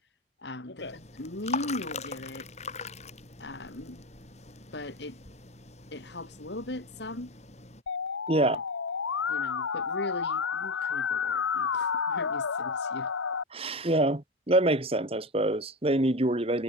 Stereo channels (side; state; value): both; normal; correlation 0.19